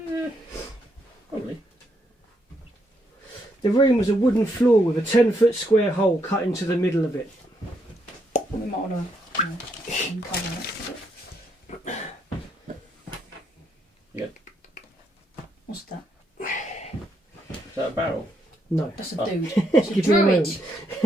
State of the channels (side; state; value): both; normal; correlation 0.76